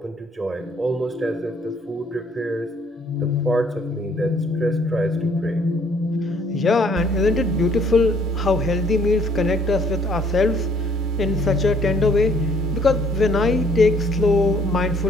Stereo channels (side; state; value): both; normal; correlation 0.62